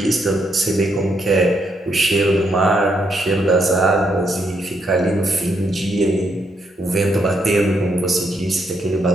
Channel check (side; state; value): both; normal; correlation 0.76